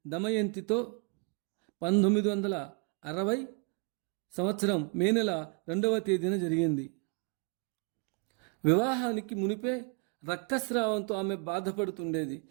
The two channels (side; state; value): left; quieter; 36.3 dB